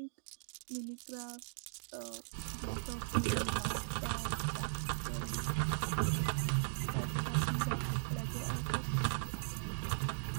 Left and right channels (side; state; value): left; silent; digital silence